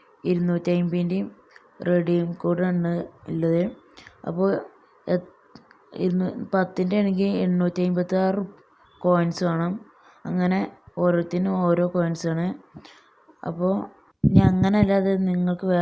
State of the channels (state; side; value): identical; both; correlation 1.00